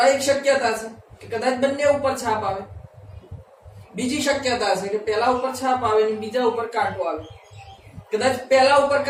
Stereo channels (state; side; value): identical; both; correlation 1.00